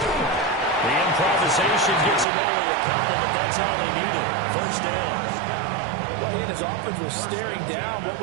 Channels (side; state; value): left; drops out; at 2.2 s